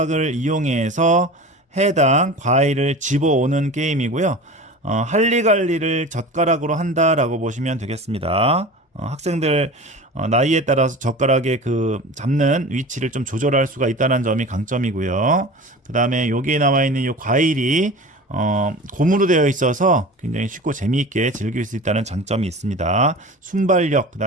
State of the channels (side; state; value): both; normal; correlation 0.35